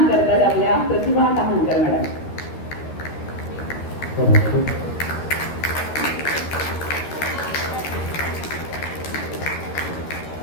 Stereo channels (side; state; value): right; late; 13 ms